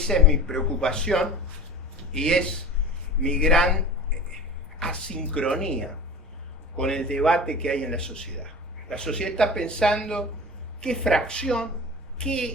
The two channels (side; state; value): both; normal; correlation 0.35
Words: es mi preocupación y es mi gran asincronía con el debate que hay en la sociedad. La sociedad está pensando qué fracción,